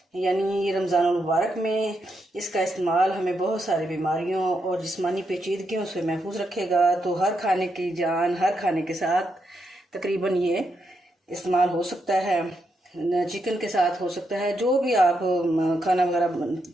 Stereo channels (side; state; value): both; normal; correlation 0.81